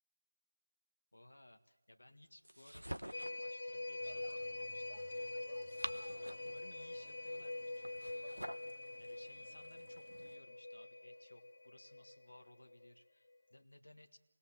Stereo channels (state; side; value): inverted; both; correlation -0.99